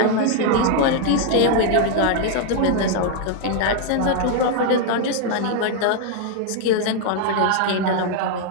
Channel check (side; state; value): both; different; correlation 0.00